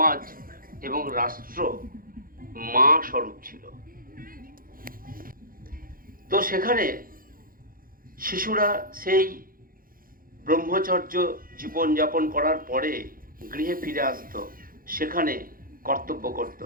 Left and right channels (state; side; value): late; left; 0.41 ms